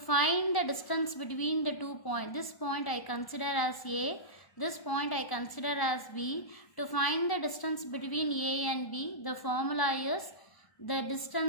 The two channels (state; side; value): late; right; 1.1 ms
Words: the distance between the 2 points, this point I consider as A, this point I consider as B. To find the distance between A and B, the formula is the